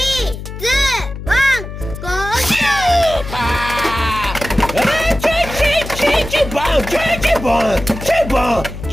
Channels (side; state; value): left; noise; hum, 10 dB below the sound